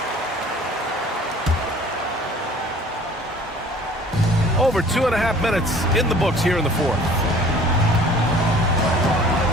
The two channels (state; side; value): normal; both; correlation 0.50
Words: Over 2.5 minutes in the books here in the fourth.